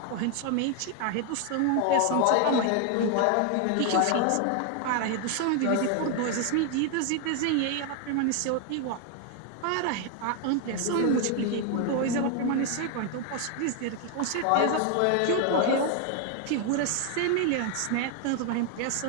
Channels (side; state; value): both; different; correlation 0.01